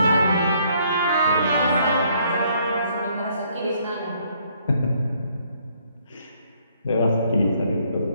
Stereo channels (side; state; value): both; inverted; correlation -0.67